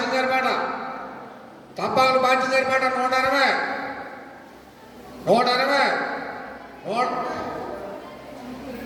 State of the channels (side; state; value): both; identical; correlation 1.00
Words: గారి పాట తప్పాలు బాధ్యత గారి పాట 160,